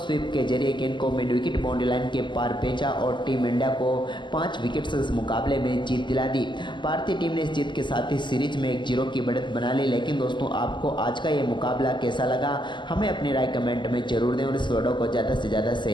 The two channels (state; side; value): late; right; 0.23 ms